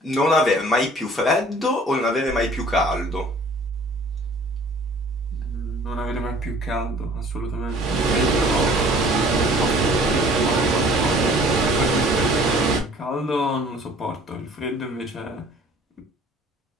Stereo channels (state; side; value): normal; both; correlation 0.52